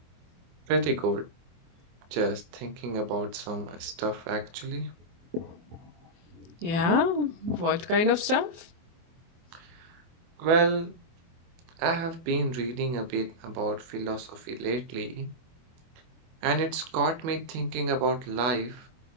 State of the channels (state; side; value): late; left; 24 ms